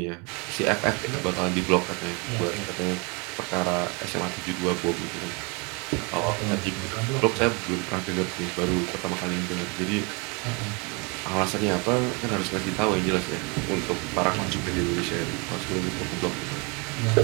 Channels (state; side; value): quieter; left; 31.1 dB